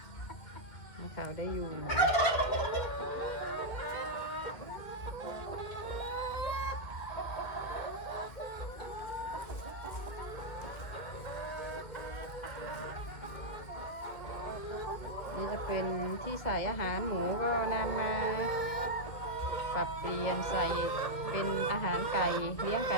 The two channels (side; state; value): right; late; 2.3 ms